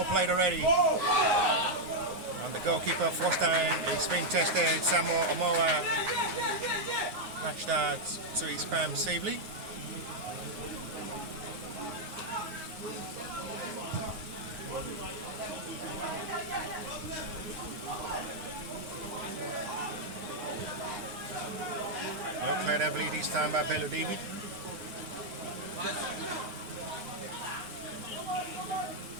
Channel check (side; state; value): left; late; 9.5 ms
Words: played already. And the goalkeeper first time is being tested. Samuel Omoa catch that to his palm safely. Well cleared heavily this time by Bello David.